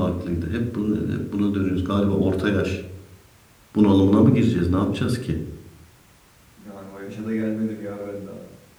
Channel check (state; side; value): identical; both; correlation 1.00